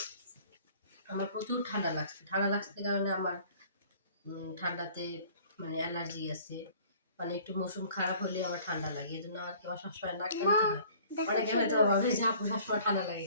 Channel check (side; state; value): both; inverted; correlation -0.52